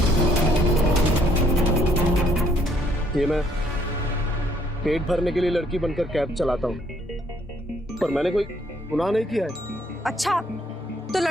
ये मैं पेट भरने के लिए लड़की बनकर कैब चलाता हूँ, पर मैंने कोई गुनाह नहीं किया है। अच्छा, तो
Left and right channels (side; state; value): both; normal; correlation 0.66